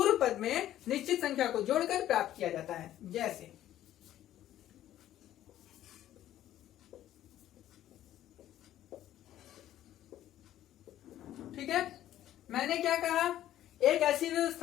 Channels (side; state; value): right; quieter; 12.6 dB